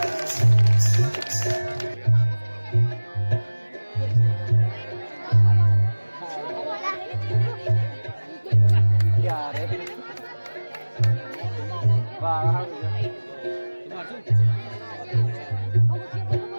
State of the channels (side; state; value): both; inverted; correlation -1.00